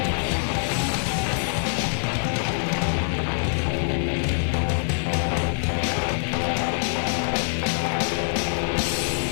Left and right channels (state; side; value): silent; right; digital silence